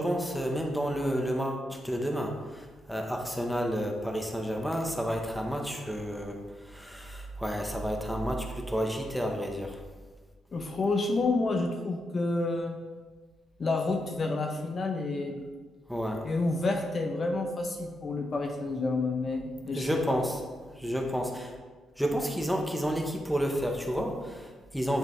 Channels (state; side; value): normal; both; correlation 0.85